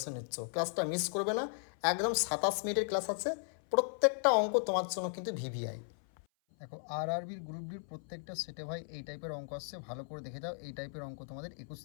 নিচ্ছ। ক্লাসটা মিস করবে না, একদম 27 মিনিটের ক্লাস আছে, প্রত্যেকটা অঙ্ক তোমার জন্য কিন্তু ভিভিআই। দেখো আরআরবির গ্রুপ ডির প্রত্যেকটা সেটে ভাই এই টাইপের অঙ্ক আসছে, ভালো করে দেখে যাও। এই টাইপের অঙ্ক তোমাদের 21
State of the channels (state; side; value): silent; right; 54 dB below the other